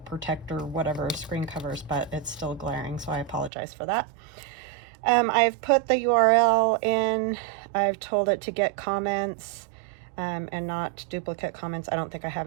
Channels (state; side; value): drops out; left; at 3.5 s